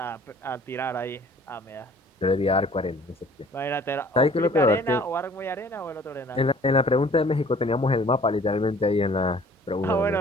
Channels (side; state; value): both; normal; correlation 0.53